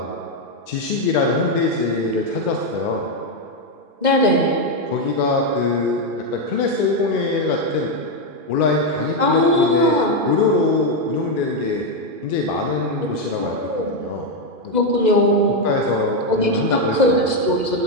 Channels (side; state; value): left; late; 2.0 ms